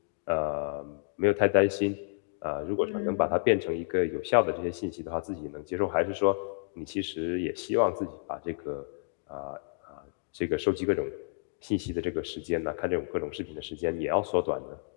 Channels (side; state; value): right; silent; digital silence